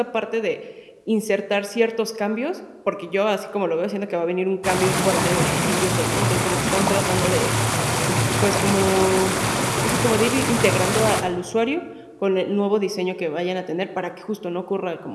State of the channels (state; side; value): identical; both; correlation 1.00